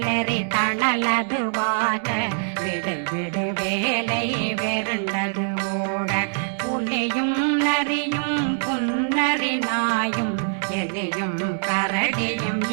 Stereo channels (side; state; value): left; silent; 63 dB below the other